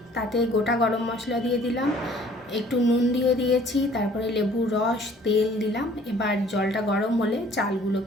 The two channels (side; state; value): both; normal; correlation 0.55